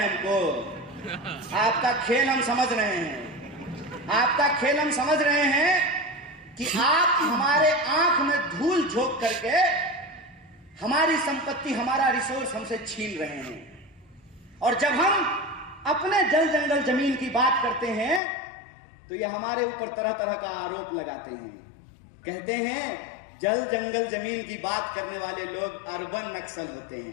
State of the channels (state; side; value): drops out; right; at 18.2 s